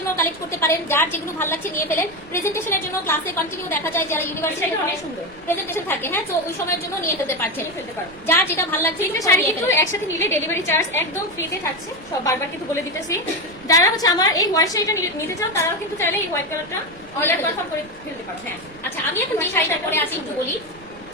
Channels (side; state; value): right; noise; rumble, 23 dB below the sound